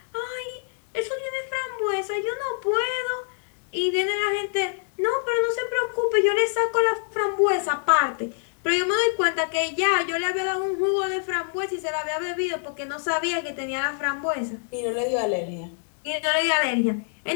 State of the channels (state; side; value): silent; right; digital silence